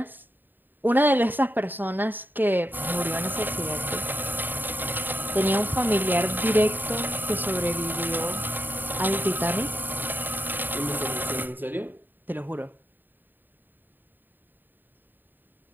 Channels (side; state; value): left; late; 0.092 ms